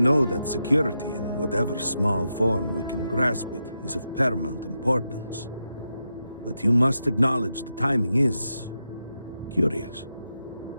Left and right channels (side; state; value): both; inverted; correlation -0.87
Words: that security, in whatever small form we can grasp it, is of paramount importance. But you must acknowledge the timing is curious.